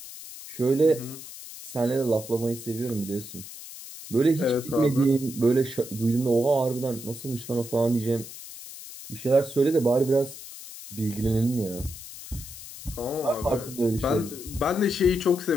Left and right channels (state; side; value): noise; left; hiss, 13 dB below the sound